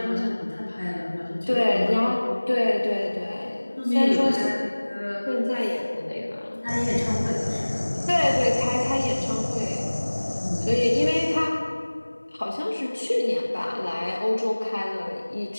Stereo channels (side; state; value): both; inverted; correlation -1.00